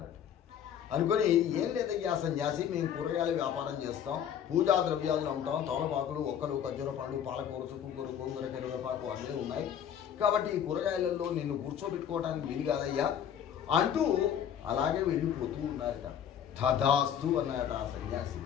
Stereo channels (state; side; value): quieter; right; 9.1 dB